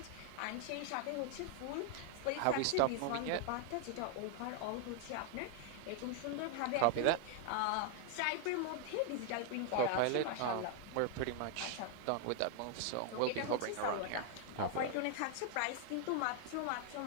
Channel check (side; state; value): both; different; correlation 0.00